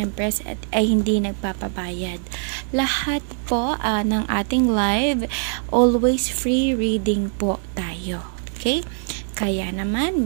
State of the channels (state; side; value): silent; left; 58 dB below the other